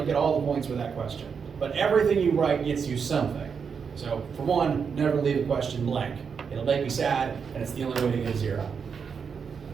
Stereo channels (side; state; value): left; quieter; 6.2 dB